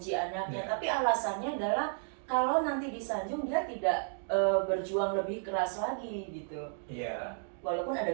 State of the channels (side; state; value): left; silent; digital silence